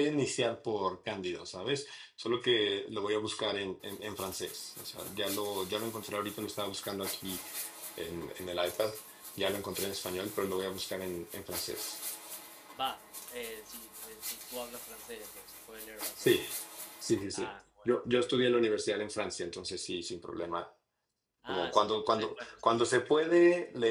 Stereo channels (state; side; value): identical; both; correlation 1.00